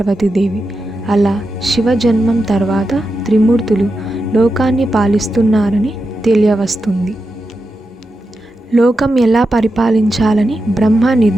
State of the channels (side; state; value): both; normal; correlation 0.89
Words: అలా శివ జన్మం తర్వాత త్రిమూర్తులు లోకాన్ని పాలిస్తున్నారని తెలియవస్తుంది. లోకం ఎలా పరిపాలించాలని బ్రహ్మ